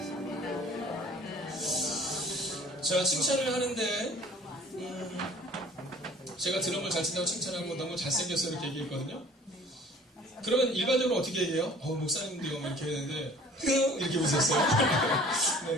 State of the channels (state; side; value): normal; both; correlation 0.50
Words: 자, 칭찬을 하는데 제가 드럼을 잘 친다고 칭찬하고 너무 잘생겼어 이렇게 얘기했거든요. 그러면 일반적으로 어떻게 얘기해요? 목사님도요 이렇게 했는데 이렇게 웃었어요.